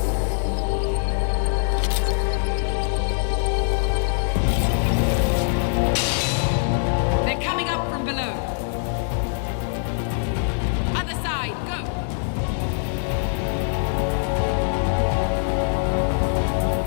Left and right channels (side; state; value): right; silent; digital silence